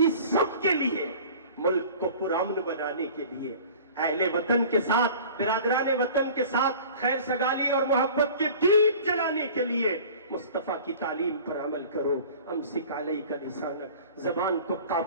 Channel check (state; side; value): inverted; both; correlation -0.43